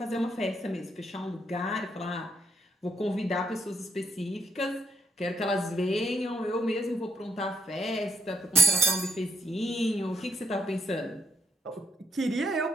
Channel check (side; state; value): both; normal; correlation 0.75